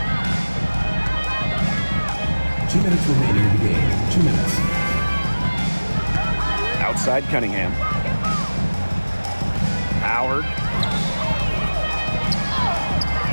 Two minutes remaining in the game. 2 minutes. Outside Cunningham. Howard.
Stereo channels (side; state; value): both; inverted; correlation -1.00